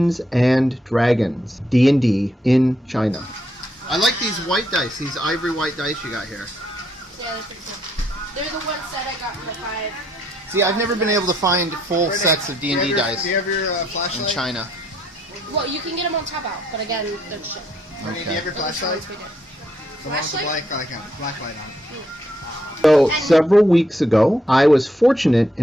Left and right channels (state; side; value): normal; both; correlation 0.73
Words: and Dragons, D&D, in China. I like these white dice, these ivory white dice you got here. Yeah, they're pretty cool. They're the ones that I got for 5. See, I've never been able to find full sets of D&D dice Do you have your flashlight? in China. Well, you can get them on Taobao, but again, they're cheap. Do you have your flashlight? Flashlight? Black light on it. So, several weeks ago, I was fortunate